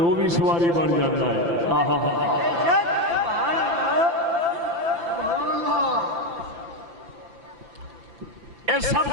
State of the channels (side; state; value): left; late; 5.9 ms